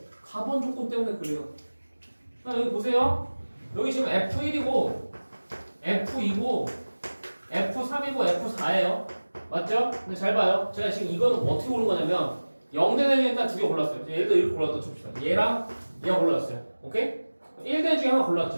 가번 조건 때문에 그래요. 자, 여기 보세요. 여기 지금 F1이고 F2고 F3이고 F4예요. 맞죠? 근데 잘 봐요. 제가 지금 이거는 어떻게 고른 거냐면 0대 중에 일단 2개 골랐어요. 예를 들어 이렇게 골랐다 칩시다. 얘랑 얘가 골랐어요. 오케이? 1대 중에 하나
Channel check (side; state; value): both; inverted; correlation -1.00